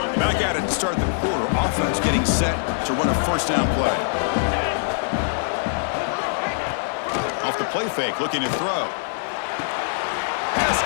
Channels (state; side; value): silent; right; 63 dB below the other